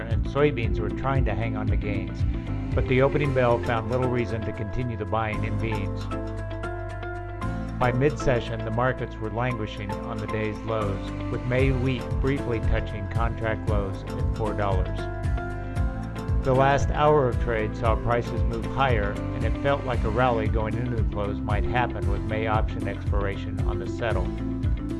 soybeans were trying to hang on to gains. But the opening bell found little reason to continue the buying in beans. By mid-session, the markets were languishing on the day's lows, with May wheat briefly touching contract lows at $4. The last hour of trade saw prices move higher, and it felt like a rally going into the close might happen with May option expiration on the settle.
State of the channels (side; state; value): both; identical; correlation 1.00